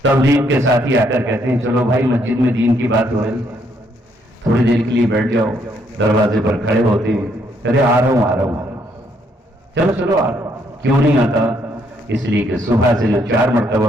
تبلیغ کے ساتھی آ کر کہتے ہیں چلو بھائی مسجد میں دین کی بات ہو رہی، تھوڑی دیر کے لیے بیٹھ جاؤ، دروازے پر کھڑے ہوتے ہیں ارے آ رہا ہوں چلو چلو آ رہا ہوں. کیوں نہیں آتا؟ اس لیے کہ صبح سے جو 4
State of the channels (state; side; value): normal; both; correlation 0.71